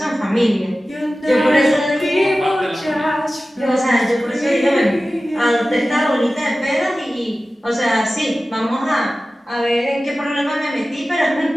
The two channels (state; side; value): normal; both; correlation 0.96